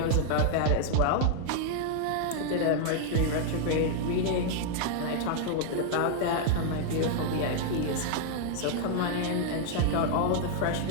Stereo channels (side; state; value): both; different; correlation 0.00